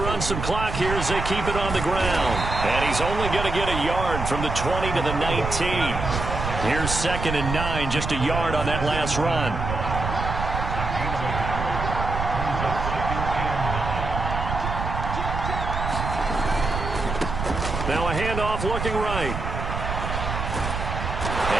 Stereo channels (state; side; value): noise; right; rumble, 4 dB below the sound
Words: run some clock here as they keep it on the ground. And he's only going to get a yard from the 20 to the 19. Here's 2nd and 9, just a yard on that last run. Now a handoff looking right.